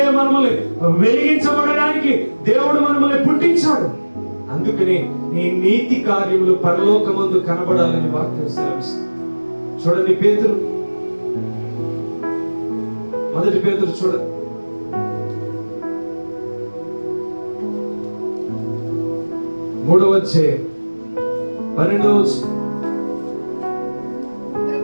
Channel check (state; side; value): inverted; both; correlation -1.00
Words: మనల్ని వెలిగించబడడానికి దేవుడు మనల్ని పుట్టించాడు. అందుకనే నీ నీతి కార్యములు పరలోకమందు కనబడాలని వాక్యం సెలవిస్తుంది. చూడండి పేతురు, మొదటి పేతురు చూడండి, 3వ అధ్యాయం 12వ వచనం.